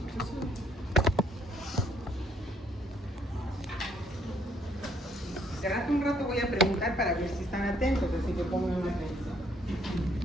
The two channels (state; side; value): normal; both; correlation 0.67